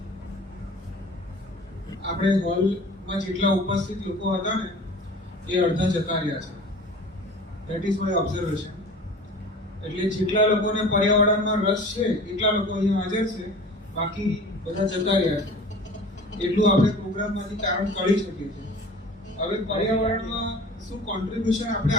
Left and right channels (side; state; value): both; normal; correlation 0.41